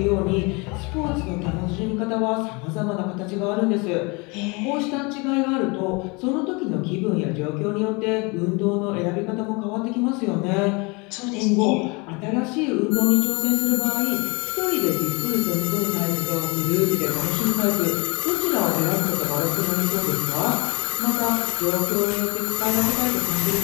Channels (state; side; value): quieter; right; 28.5 dB